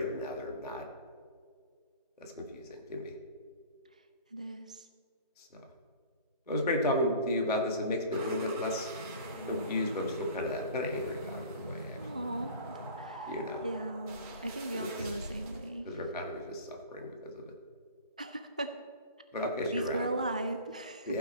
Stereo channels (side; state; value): both; inverted; correlation -0.41